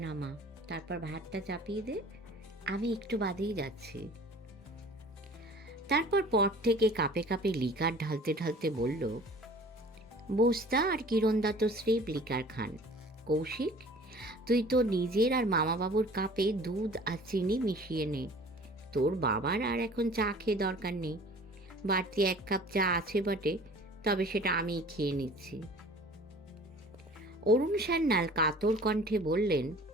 নামা, তারপর ভাতটা চাপিয়ে দে, আমি একটু বাদেই যাচ্ছি। তারপর পর থেকে কাপে কাপে লিকার ঢালতে ঢালতে বলল, বোস্তা আর কিরণদা তো স্রেফ লিকার খান। কৌশিক, তুই তো নিজের আর মামাবাবুর কাপে দুধ আর চিনি মিশিয়ে নে। তোর বাবার আর এখন চা খেয়ে দরকার নেই, বাড়তি 1 কাপ চা আছে বটে, তবে সেটা আমি খেয়ে নিচ্ছি। অরুণ সান্যাল কাতর কণ্ঠে বললেন,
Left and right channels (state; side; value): normal; both; correlation 0.47